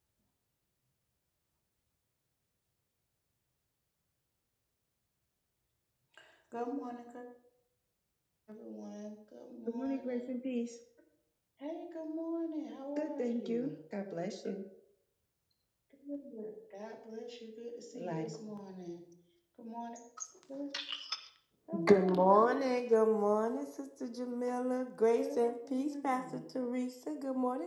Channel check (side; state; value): both; identical; correlation 1.00